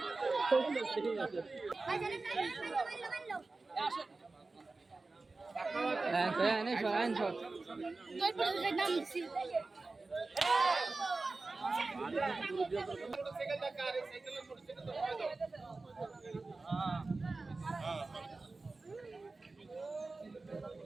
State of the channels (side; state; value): left; quieter; 3.6 dB